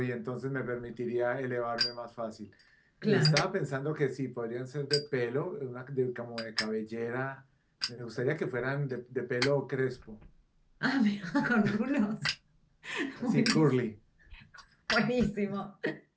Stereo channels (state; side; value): identical; both; correlation 1.00